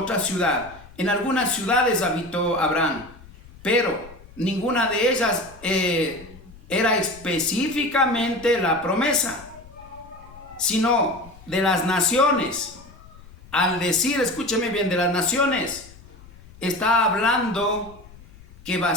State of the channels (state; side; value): noise; left; rumble, 22 dB below the sound